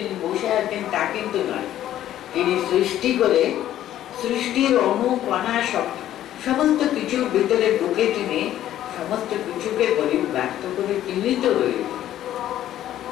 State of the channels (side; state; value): right; quieter; 12.4 dB